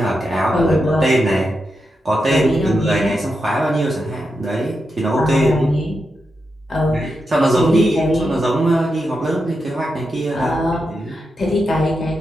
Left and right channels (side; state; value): both; normal; correlation 0.86